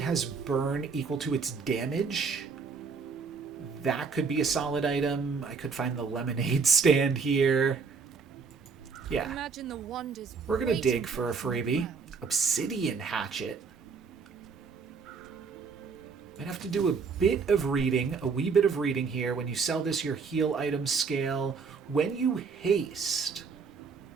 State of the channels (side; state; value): left; quieter; 5.3 dB